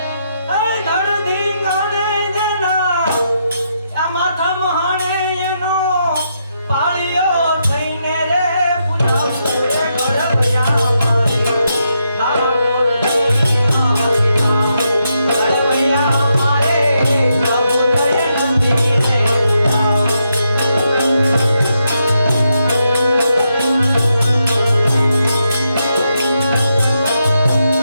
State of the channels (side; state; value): both; inverted; correlation -0.81